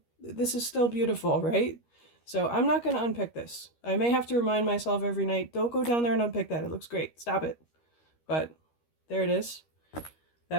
this is still beautiful, right? So I'm not going to unpick this. I may have to remind myself every night, don't go down there and unpick that. It looks great. Stop it. But there it is.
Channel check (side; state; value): right; late; 13 ms